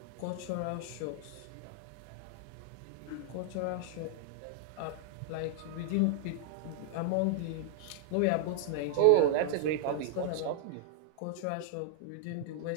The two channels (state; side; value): different; both; correlation -0.01